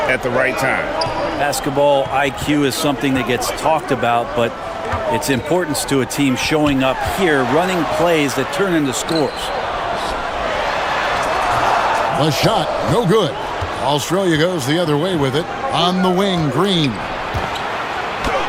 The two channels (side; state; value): both; identical; correlation 1.00